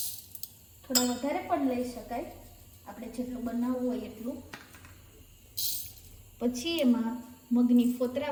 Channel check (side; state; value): both; identical; correlation 1.00